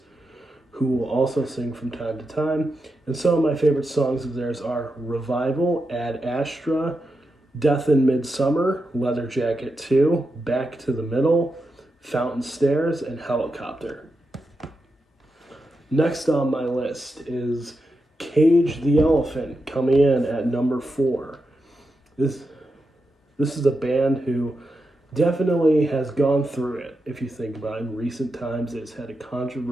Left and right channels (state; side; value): normal; both; correlation 0.87